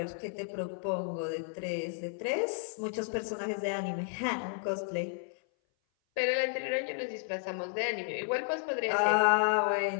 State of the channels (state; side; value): silent; right; 56 dB below the other